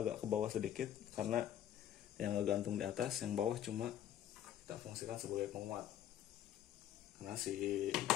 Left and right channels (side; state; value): right; quieter; 10.9 dB